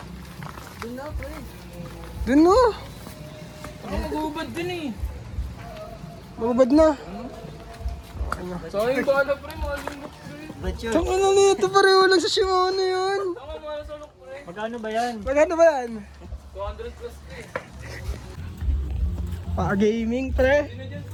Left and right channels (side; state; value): both; identical; correlation 1.00